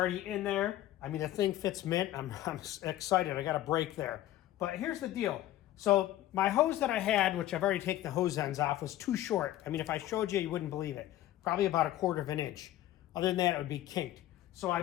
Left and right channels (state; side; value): quieter; right; 14.0 dB